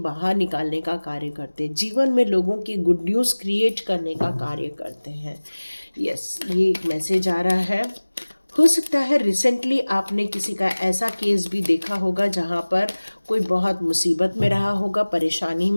निकालने का कार्य करते हैं, जीवन में लोगों की गुड न्यूज़ क्रिएट करने का कार्य करते हैं। यस, ये एक मैसेज आ रहा है। हो सकता है रिसेंटली आपने किसी का ऐसा केस भी देखा होगा जहाँ पर कोई बहुत मुसीबत में रहा होगा, परेशानी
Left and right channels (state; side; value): inverted; both; correlation -1.00